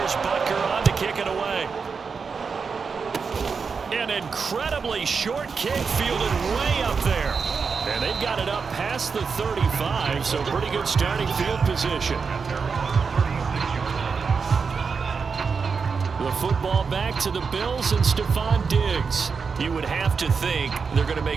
Butker on to kick it away. An incredibly short kick fielded way up there. And they've got it up past the 35, so pretty good starting field position. The football back to the Bills and Stephon Diggs. You would have to think they're going to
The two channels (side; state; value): left; quieter; 5.4 dB